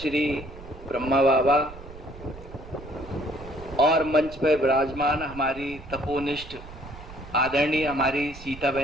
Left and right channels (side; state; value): right; noise; rumble, 16 dB below the sound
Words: ब्रह्मा बाबा और मंच पर विराजमान हमारी तपोनिष्ठ आदरणीय हमारी सीता